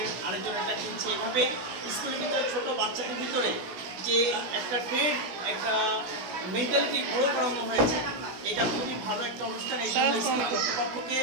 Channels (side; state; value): left; late; 16 ms